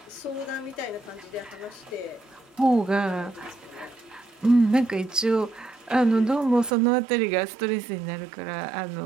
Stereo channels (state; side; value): drops out; left; at 6.8 s